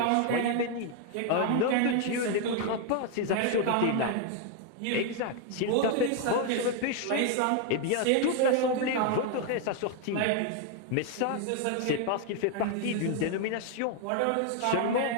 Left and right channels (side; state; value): both; different; correlation 0.00